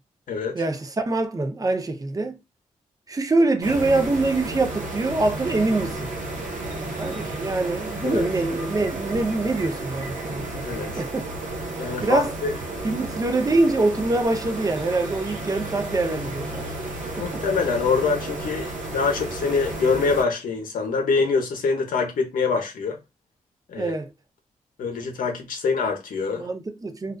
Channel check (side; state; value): both; normal; correlation 0.66